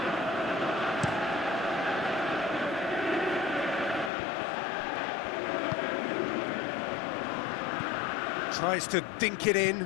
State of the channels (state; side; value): drops out; right; at 4.1 s